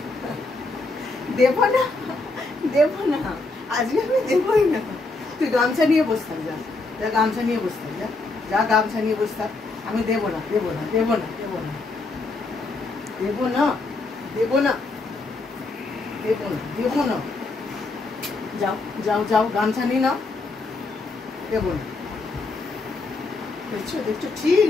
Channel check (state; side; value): quieter; right; 3.4 dB